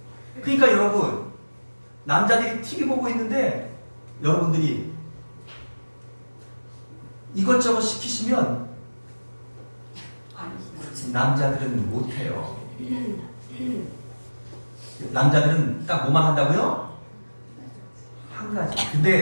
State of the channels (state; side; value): inverted; both; correlation -1.00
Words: 그러니까 여러분, 남자들이 TV 보고 있는데 여러분들이 이것저것 시키시면 남자들은 못해요. 남자들은 딱 뭐만 한다고요? 한 가지.